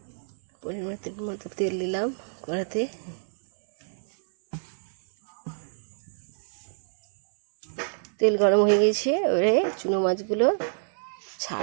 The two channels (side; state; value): left; silent; 60 dB below the other